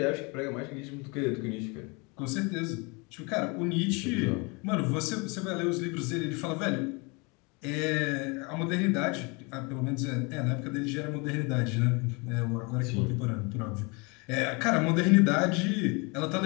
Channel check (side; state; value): right; quieter; 29.5 dB